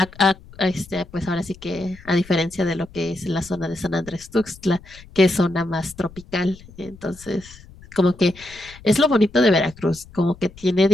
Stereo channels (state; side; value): noise; left; rumble, 21 dB below the sound